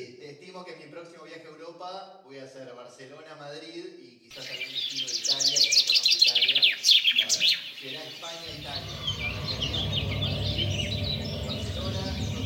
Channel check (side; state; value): both; identical; correlation 1.00